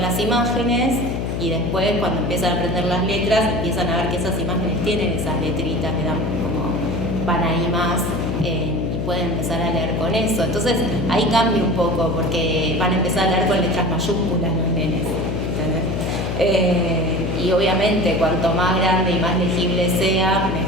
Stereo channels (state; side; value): noise; left; hum, 2 dB below the sound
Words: las imágenes y después, cuando empiezan a aprender las letras, empiezan a ver que esas imágenes tienen esas letritas, que dan como van ahí más y pueden empezar a leer con eso. Entonces ahí cambia un poco porque van a empezar a leer con letras mayúsculas los nenes, ¿entendés? Y obviamente cuanto más grande y más legible sea,